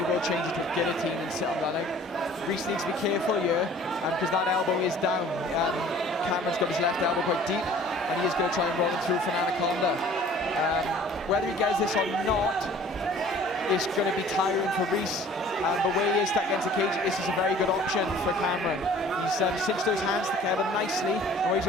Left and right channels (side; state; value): both; normal; correlation 0.50